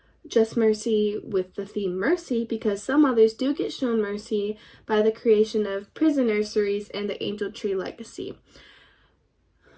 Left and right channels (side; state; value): both; identical; correlation 1.00